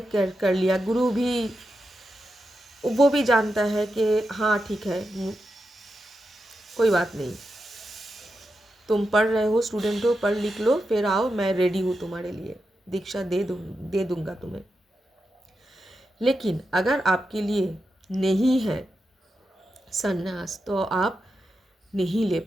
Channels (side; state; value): both; normal; correlation 0.88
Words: कर लिया, गुरु भी वो भी जानता है कि हाँ ठीक है, कोई बात नहीं, तुम पढ़ रहे हो, स्टूडेंट हो, पढ़ लिख लो, फिर आओ, मैं रेडी हूँ तुम्हारे लिए, दीक्षा दे दूँगा तुम्हें। लेकिन अगर आपके लिए नहीं है संन्यास, तो आप नहीं ले